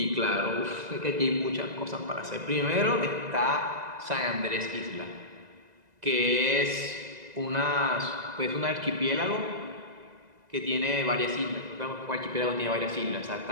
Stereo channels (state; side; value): late; left; 2.0 ms